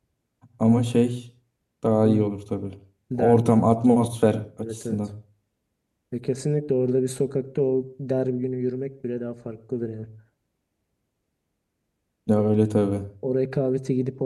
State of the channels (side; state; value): both; identical; correlation 1.00